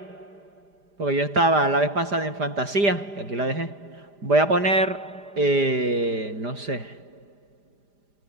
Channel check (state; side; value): late; left; 5.0 ms